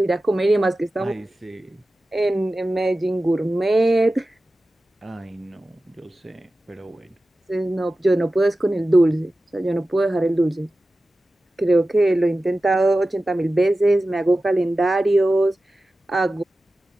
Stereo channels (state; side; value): normal; both; correlation 0.95